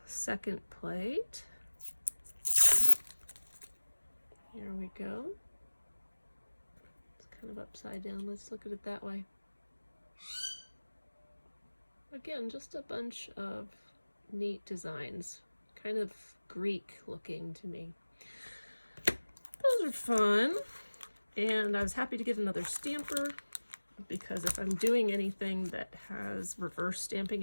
second plate, here we go. It's kind of upside down. Let's look at it that way. Again, just a bunch of neat designs, kind of Greek looking to me. Those are fun. And I was happy to get another stamper because if I'm doing anything that has reverse stamping,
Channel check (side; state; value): both; inverted; correlation -1.00